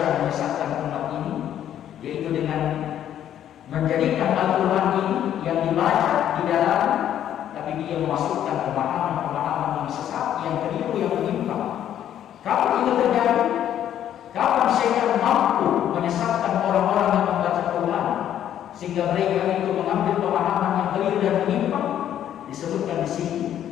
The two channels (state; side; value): quieter; right; 10.7 dB